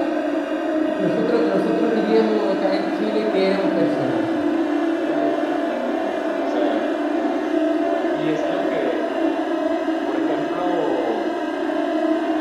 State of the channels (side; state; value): both; identical; correlation 1.00